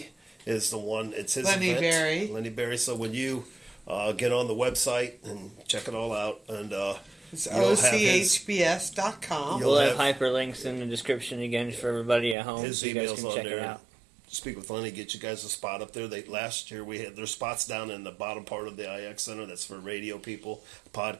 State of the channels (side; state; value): left; drops out; at 12.4 s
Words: is the one. It's his Lenny event. Berry. Lenny Berry. So when you get on the website and check it all out, and it's ochbs.com. We'll have hyperlinks in the description again for everybody at home. His so you guys email's can on check there. it out. Speak with Lenny, get you guys a spot up there. Last year we had their spots down in the bottom part of the IX Center. That's for radio people,